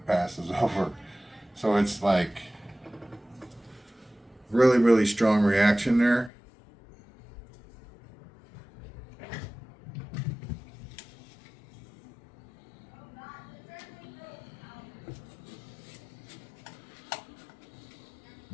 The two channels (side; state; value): right; drops out; at 6.3 s